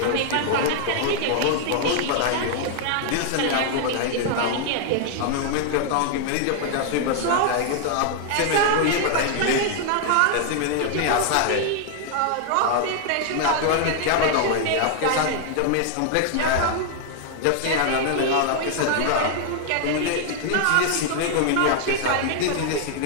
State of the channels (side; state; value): both; different; correlation 0.00